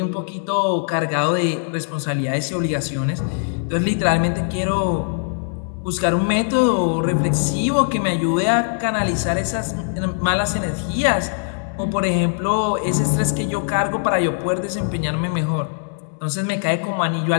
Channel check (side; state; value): right; silent; 65 dB below the other